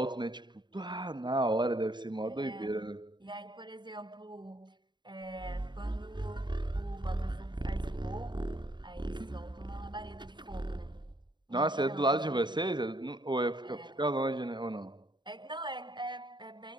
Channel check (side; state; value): left; late; 0.22 ms